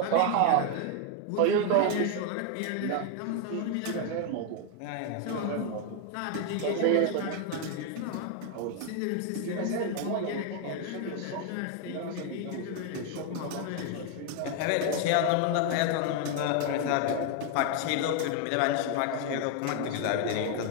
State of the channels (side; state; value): both; different; correlation 0.01